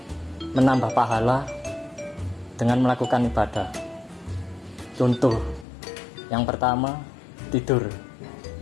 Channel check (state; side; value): drops out; right; at 5.7 s